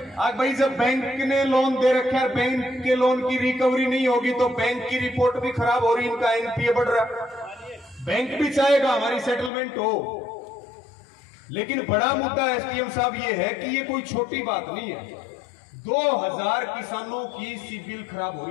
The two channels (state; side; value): drops out; right; at 9.5 s